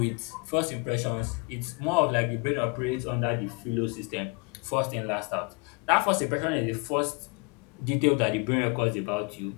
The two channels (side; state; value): right; quieter; 32.1 dB